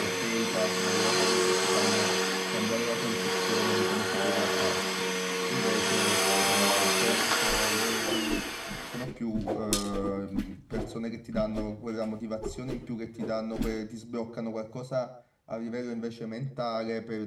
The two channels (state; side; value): identical; both; correlation 1.00